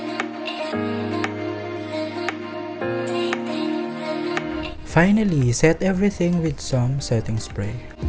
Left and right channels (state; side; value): identical; both; correlation 1.00